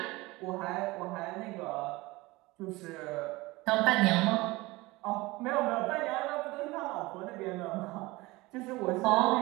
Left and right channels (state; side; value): quieter; left; 21.4 dB